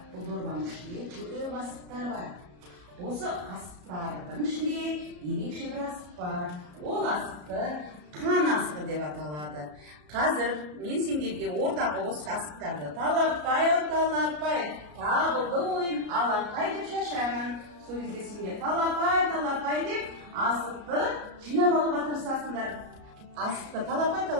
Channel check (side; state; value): left; late; 33 ms